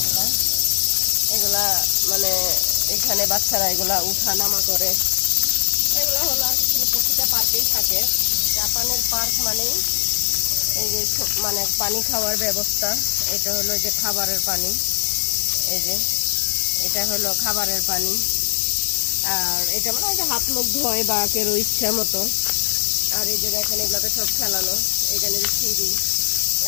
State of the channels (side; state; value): right; silent; 57 dB below the other